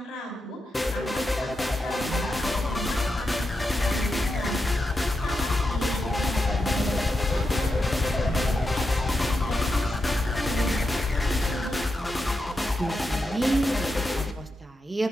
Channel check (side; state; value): both; normal; correlation 0.87